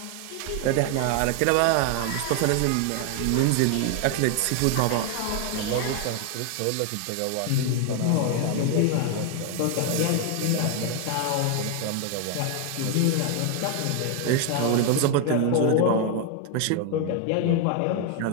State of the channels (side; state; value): both; different; correlation 0.00